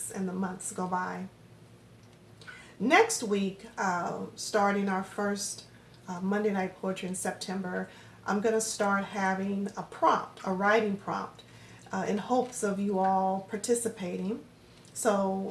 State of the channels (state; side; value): identical; both; correlation 1.00